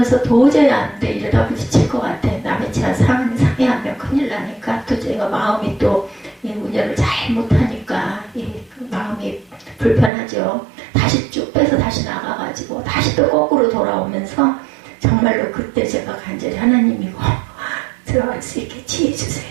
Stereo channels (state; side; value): drops out; left; at 10.1 s